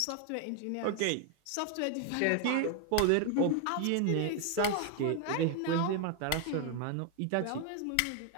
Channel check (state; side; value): different; both; correlation 0.01